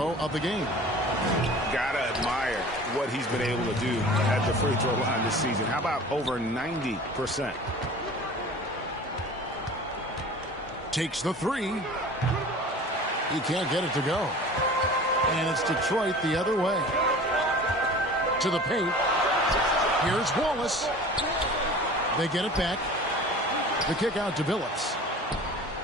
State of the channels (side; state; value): both; normal; correlation 0.41